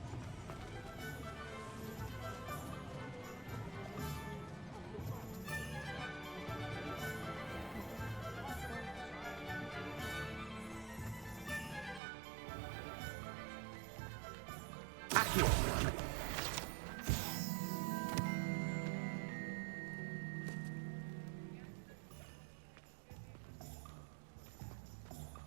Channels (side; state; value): left; drops out; at 12.0 s